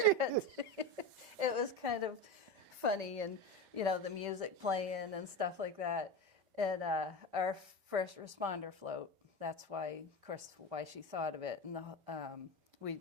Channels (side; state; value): left; late; 5.1 ms